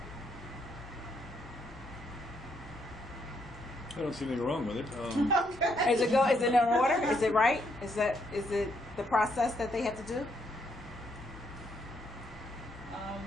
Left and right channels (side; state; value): both; normal; correlation 0.74